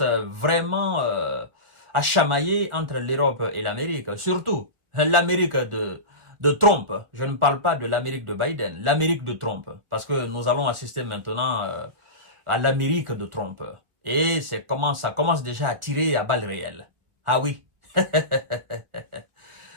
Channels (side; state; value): left; late; 1.8 ms